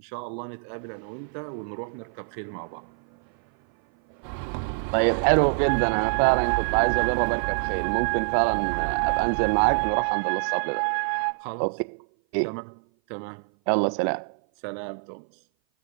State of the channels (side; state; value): left; silent; 58 dB below the other